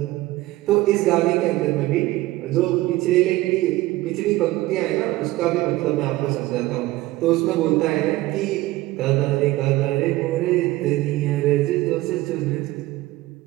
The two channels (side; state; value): left; quieter; 18.0 dB